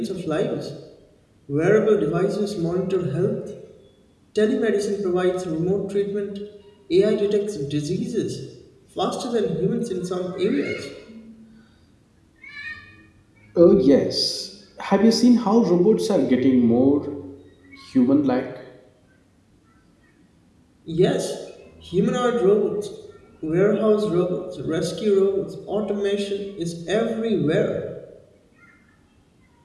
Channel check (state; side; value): identical; both; correlation 1.00